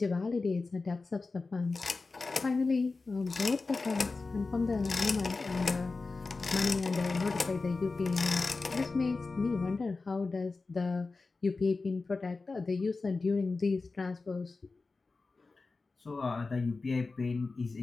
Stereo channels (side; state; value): right; quieter; 3.9 dB